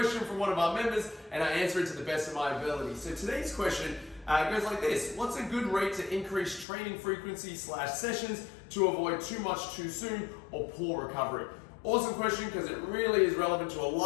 from one of our members and I answer it to the best of my ability. So today's question goes like this. What's a good rate to increase training frequency / sessions to avoid too much too soon or poor recovery? Awesome question, because it really is relevant to a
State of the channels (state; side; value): drops out; right; at 6.7 s